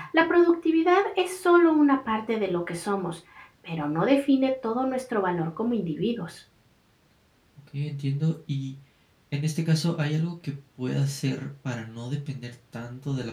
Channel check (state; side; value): identical; both; correlation 1.00